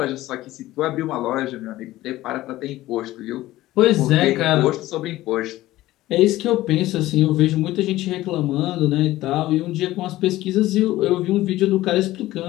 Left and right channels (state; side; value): quieter; right; 16.2 dB